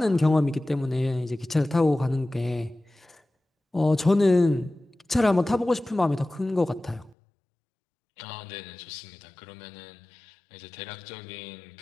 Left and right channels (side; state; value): right; drops out; at 7.2 s